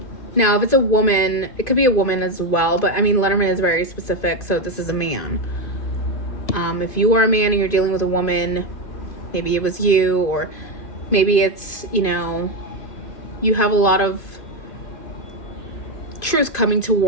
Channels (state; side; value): late; right; 2.5 ms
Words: Now, if it's a woman, it could be a woman as well, but I mean, Letterman is very specific, so this is a man. If you are a man and you're dealing with a woman, maybe it was you, or maybe it's, you know, you have a lot of truth coming